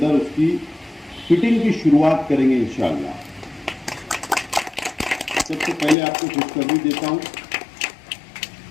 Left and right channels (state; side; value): drops out; right; at 6.0 s